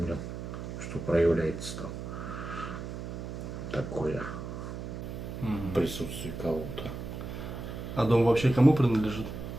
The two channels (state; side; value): noise; right; hum, 7 dB below the sound